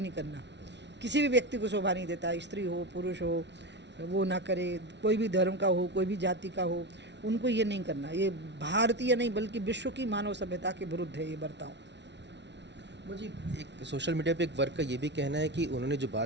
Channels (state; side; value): late; left; 0.51 ms